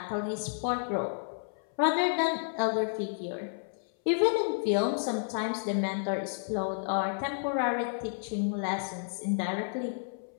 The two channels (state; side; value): silent; right; 57 dB below the other